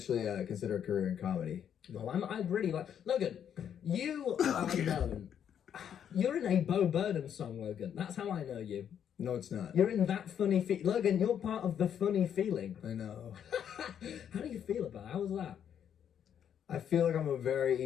consider a career in comedy. Well, I really like... Logan, you are known... You're in a Bo Burnham song, Logan. That's how I know you. No, it's not. You're in that funny... Logan, you're part of the funny feeling. I know. How do you feel about it? How was that? I feel like I'm a very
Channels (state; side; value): quieter; right; 8.9 dB